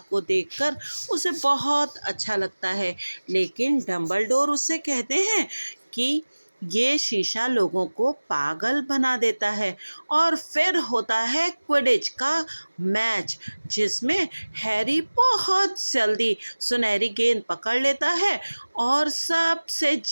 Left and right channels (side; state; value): both; inverted; correlation -1.00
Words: देखकर उसे बहुत अच्छा लगता है। लेकिन डंबलडोर उससे कहते हैं कि ये शीशा लोगों को पागल बना देता है। और फिर होता है क्विडिच का मैच, जिसमें हैरी बहुत जल्दी सुनहरी गेंद पकड़ लेता है और सबसे